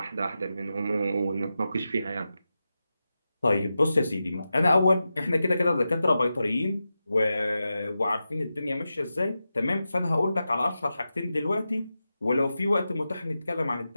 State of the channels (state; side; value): inverted; both; correlation -0.91